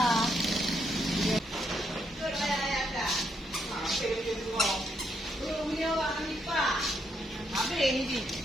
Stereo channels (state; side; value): normal; both; correlation 0.76